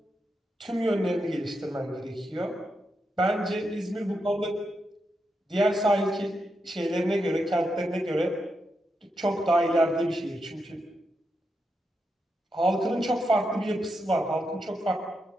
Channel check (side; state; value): both; normal; correlation 0.85